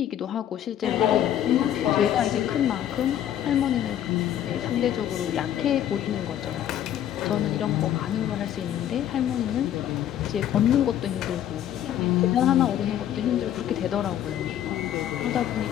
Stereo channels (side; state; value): right; quieter; 11.0 dB